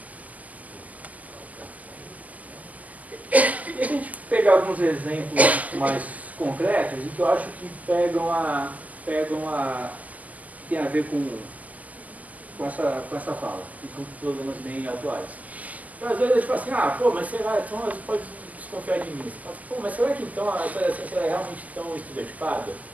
E se a gente pegar alguns exemplos mais concretos, e que eu acho que tem a ver com essa fala, e com problemas bem atuais. Então, às vezes a gente fala assim, mas será, então você pode desconfiar de mim. Você fala, mas será que então a ciência é realmente tão estereotipada?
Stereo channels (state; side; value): late; left; 0.077 ms